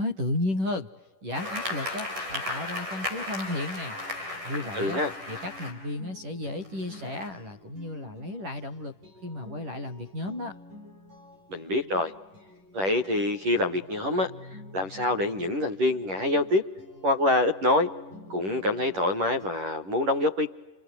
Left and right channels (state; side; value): late; left; 10 ms